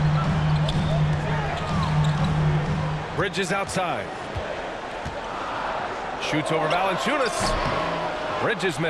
Bridges outside. Shoots over Valanciunas. Bridges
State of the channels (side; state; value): both; identical; correlation 1.00